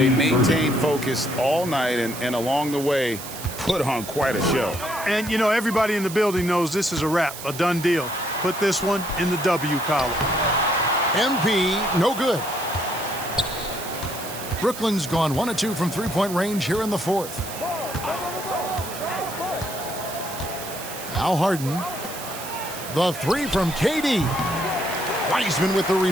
maintained focus all night and along the way put on quite a show. And, you know, everybody in the building knows this is a wrap, a done deal. Put this one in the W column. MP, no good. Brooklyn's gone 1 of 2 from three-point range here in the fourth. Now Harden. The three from KD. Wiseman with the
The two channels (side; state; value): right; noise; hiss, 11 dB below the sound